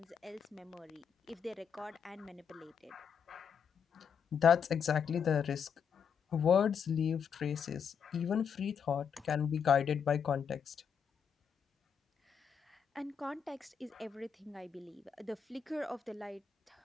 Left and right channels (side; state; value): right; quieter; 7.0 dB